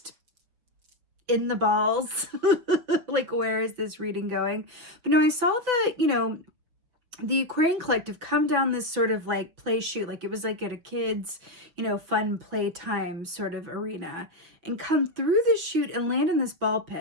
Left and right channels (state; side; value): late; left; 6.0 ms